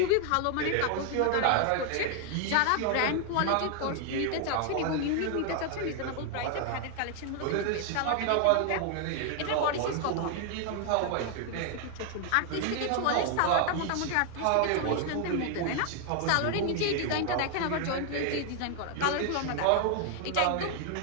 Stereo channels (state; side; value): different; both; correlation 0.00